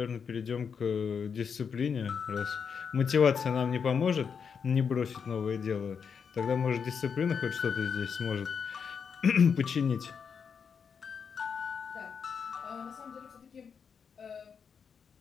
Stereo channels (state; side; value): quieter; right; 6.5 dB